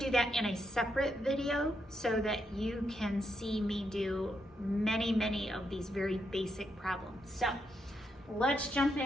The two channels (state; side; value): normal; both; correlation 0.81